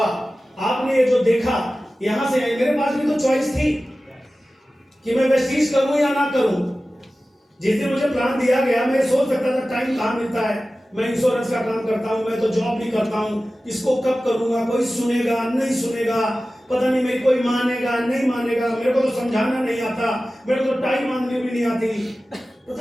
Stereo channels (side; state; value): both; normal; correlation 0.95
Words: आपने ये जो देखा, यहाँ से मेरे पास भी तो चॉइस थी कि मैं वेस्टीज करूं या ना करूं। जिस दिन मुझे प्लान दिया गया, मैं सोच सकता था टाइम कहाँ मिलता है, मैं इंश्योरेंस का काम करता हूँ, मैं तो जॉब भी करता हूँ, इसको कब करूंगा, कोई सुनेगा नहीं सुनेगा, पता नहीं मेरी कोई मानेगा नहीं मानेगा, मेरे को तो समझाना नहीं आता, मेरे को तो टाइम मांगनी भी नहीं आती,